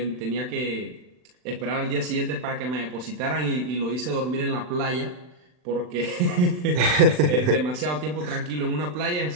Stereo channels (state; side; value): late; left; 39 ms